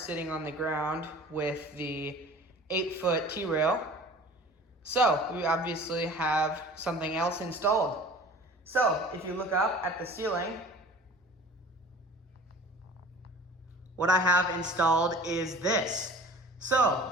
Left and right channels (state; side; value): normal; both; correlation 0.44